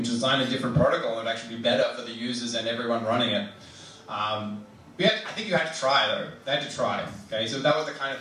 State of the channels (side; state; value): both; identical; correlation 1.00